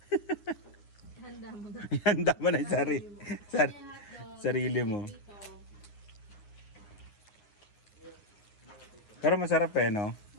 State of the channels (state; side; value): late; right; 9.7 ms